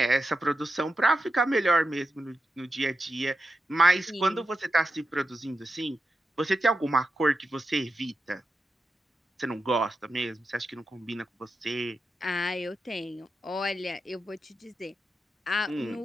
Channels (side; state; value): both; normal; correlation 0.89